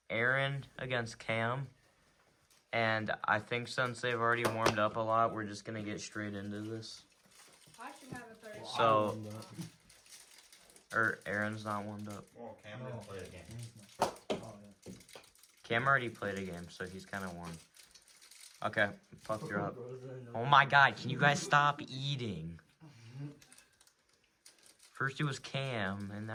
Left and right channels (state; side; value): identical; both; correlation 1.00